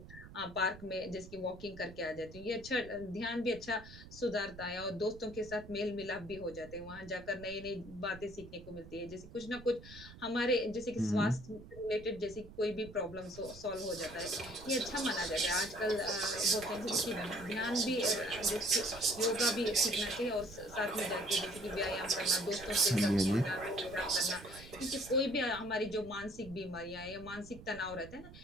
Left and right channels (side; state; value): right; noise; rumble, 16 dB below the sound